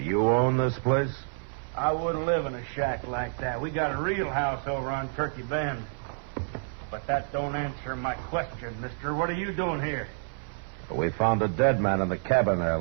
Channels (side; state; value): left; silent; 59 dB below the other